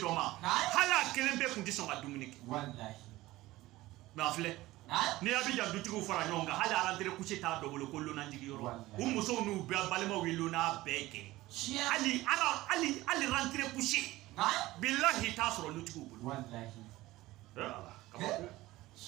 ma hali a kelen bɛɛ kun tɛ sɔn ka dumuni kɛ mais a filɛ n'i y'a bɛ jan dutigiw fara ɲɔgɔn kan hali arantere couché t'a dɔ bolo ko lonajigi yɔrɔ u musow n'u balimaw ye lona bɛɛ kɛ hali rentrée couché billahi t'a sɔrɔ lutigiw bolo kabako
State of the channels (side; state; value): left; quieter; 17.8 dB